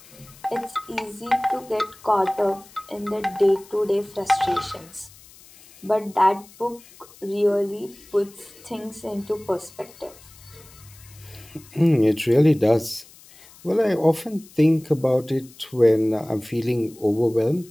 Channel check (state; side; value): noise; left; hiss, 23 dB below the sound